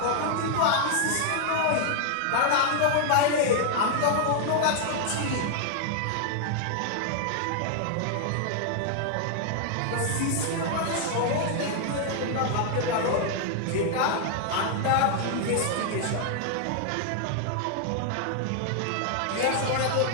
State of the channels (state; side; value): different; both; correlation 0.00